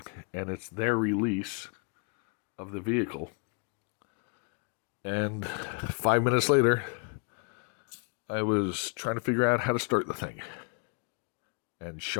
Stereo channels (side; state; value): right; quieter; 36.7 dB